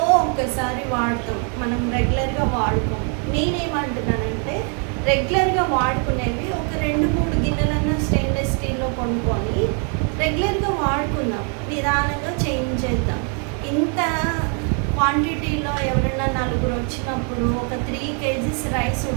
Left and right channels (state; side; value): quieter; left; 39.8 dB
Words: ఒక్కసారి వాడతాం, మనం రెగ్యులర్గా వాడుకోం. నేనేమంటున్నానంటే రెగ్యులర్గా వాడుకునేవి ఒక 2-3 గిన్నెలన్నా స్టెయిన్లెస్ స్టీల్లో కొనుక్కొని రెగ్యులర్గా వాడుకుందాం, నిదానంగా చేంజ్ చేద్దాం. ఇంత క్వాంటిటీలో ఎవరైనా 4 వచ్చినప్పుడు ఒక 3 kgs రైస్